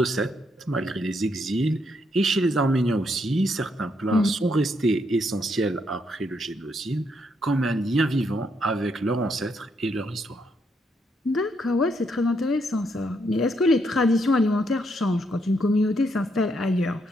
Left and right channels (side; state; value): both; normal; correlation 0.76